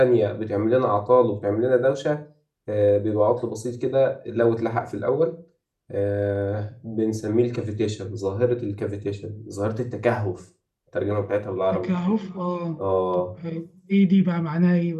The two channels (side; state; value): both; identical; correlation 1.00